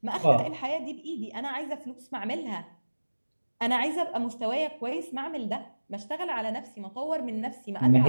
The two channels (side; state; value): both; inverted; correlation -1.00